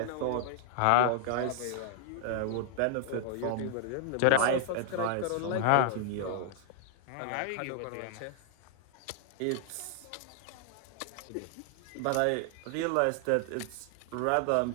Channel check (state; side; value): different; both; correlation 0.00